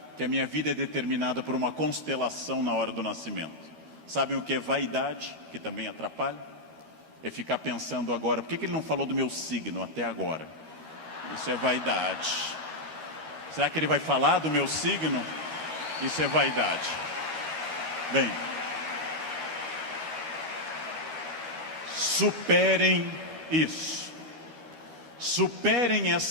que a minha vida é determinada por uma constelação na hora do nascimento. Sabem o que é vaidade, que também atrapalha? É ficar pensando agora, por que ele não falou do meu signo até agora? Isso é vaidade. Será que ele vai falar do meu signo? Isso é vaidade. Bem, superem isso. Superem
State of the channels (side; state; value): left; late; 13 ms